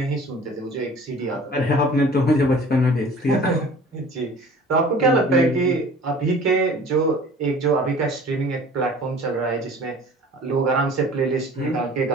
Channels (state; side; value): normal; both; correlation 0.46